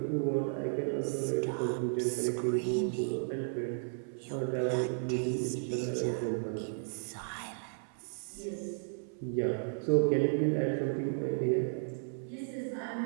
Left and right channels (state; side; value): silent; left; 55 dB below the other